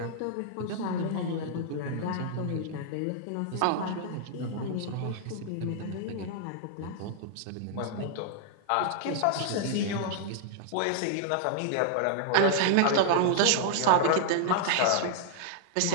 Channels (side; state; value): both; different; correlation -0.01